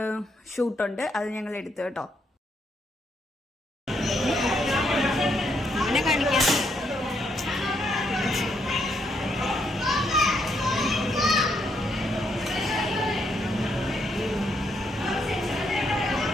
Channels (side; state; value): both; normal; correlation 0.76